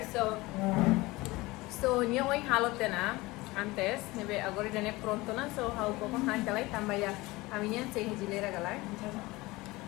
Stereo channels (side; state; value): right; quieter; 21.2 dB